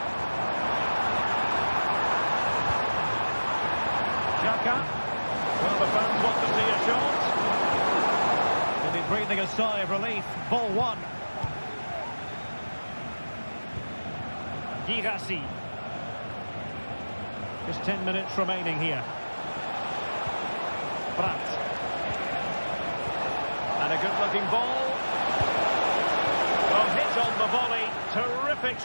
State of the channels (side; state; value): both; inverted; correlation -1.00